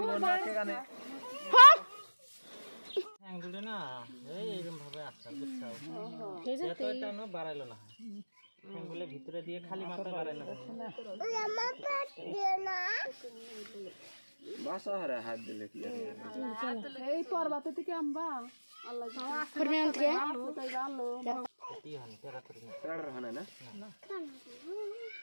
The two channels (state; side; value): inverted; both; correlation -1.00